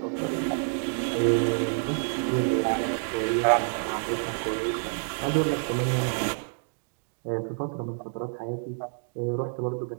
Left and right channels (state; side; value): silent; left; digital silence